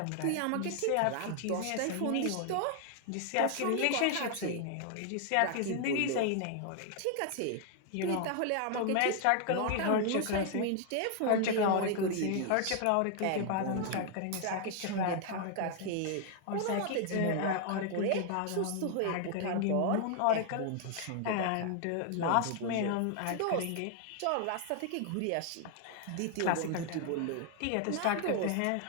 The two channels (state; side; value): different; both; correlation 0.00